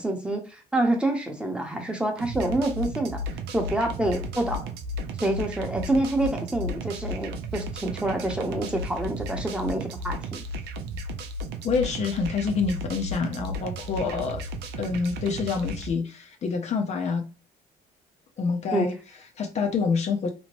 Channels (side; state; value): both; normal; correlation 0.63